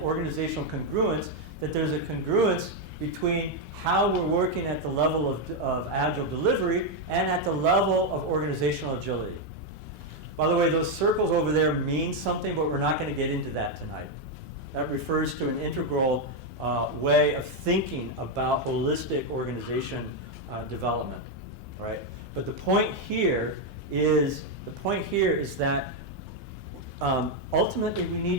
congruence, that there's a congruence between how we're working at the level of Agile delivery and at the level of organizational agility. By the way, those circles over there mean something, but we're not going to get into that tonight. That refers to an integral way of thinking about holistic organization development, right? But the point here is that ultimately we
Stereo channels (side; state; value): both; normal; correlation 0.03